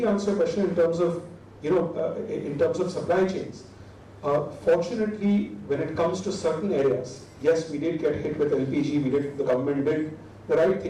answer your question in terms of, in terms of supply chains, fortunately, when it comes to certain areas, yes, we did get hit with LPG. The government did the right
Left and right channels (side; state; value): both; identical; correlation 1.00